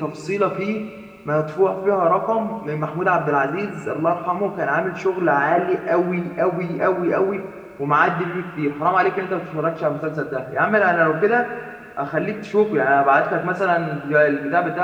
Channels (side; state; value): both; identical; correlation 1.00